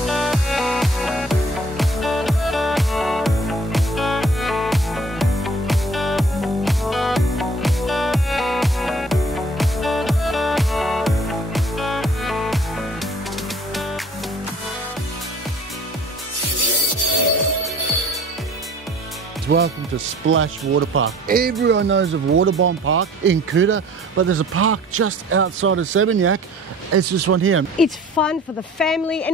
Welcome to Splash Water Park. Everyone knows of Waterbomb Park in Kuta, but there's a park just outside of Seminyak. It's this one here. It's fun for the family,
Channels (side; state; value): both; normal; correlation 0.51